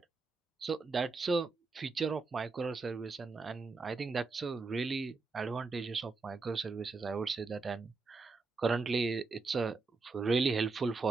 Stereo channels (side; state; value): left; quieter; 4.1 dB